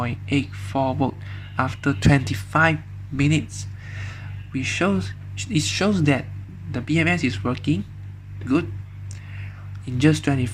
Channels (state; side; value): identical; both; correlation 1.00